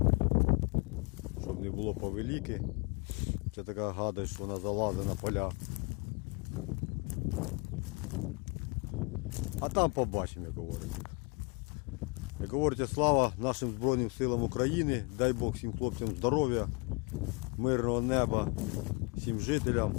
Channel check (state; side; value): quieter; right; 30.6 dB